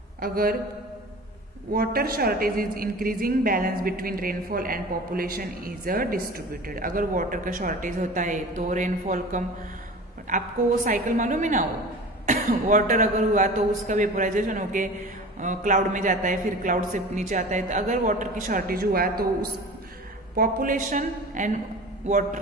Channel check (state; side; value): normal; both; correlation 0.37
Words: अगर water shortage is increasing balance between rainfall and population is distributed. अगर वाटर का शॉर्टेज होता है तो रेनफॉल कम, आपको वो साइकिल मालूम है ना, वो वाटर अगर हुआ तो उसका वेपोराइजेशन होके क्लाउड में जाता है, फिर क्लाउड से नीचे आता है। तो अगर वाटर की शॉर्टेज हुआ तो उस पॉपुलेशन एंड